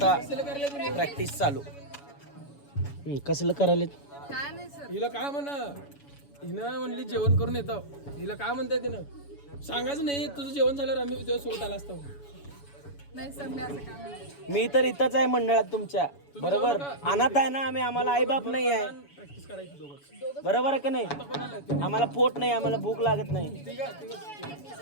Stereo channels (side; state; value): right; late; 7.1 ms